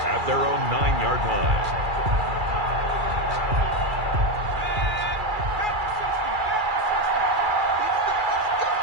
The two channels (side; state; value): left; late; 2.3 ms